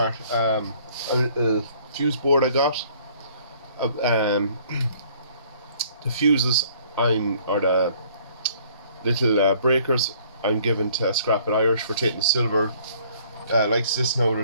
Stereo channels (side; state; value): both; inverted; correlation -0.59